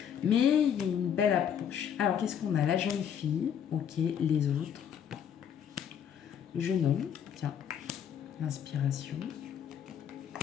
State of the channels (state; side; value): quieter; right; 8.6 dB